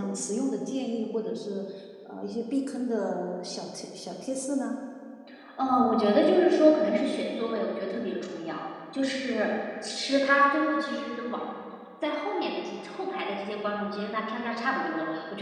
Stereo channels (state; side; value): identical; both; correlation 1.00